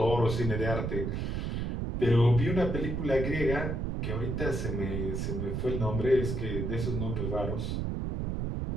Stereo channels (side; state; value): right; noise; rumble, 1 dB below the sound